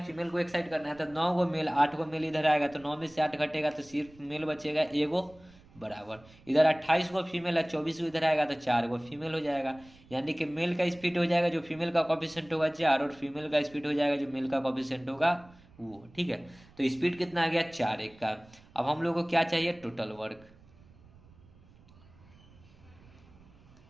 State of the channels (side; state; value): right; noise; rumble, 25 dB below the sound